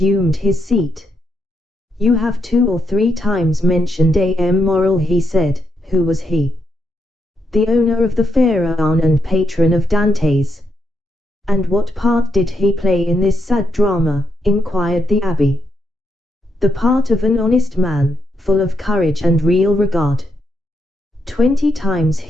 his seat. You have 2 or 3 times mentioned A.M. Morrel, he said. Who was he? The owner of the Pharaon and patron of Dantes. And what part did he play in this sad drama? Inquired the abbé. The part of an honest man, full of courage and real regard. 20 times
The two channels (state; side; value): normal; both; correlation 0.81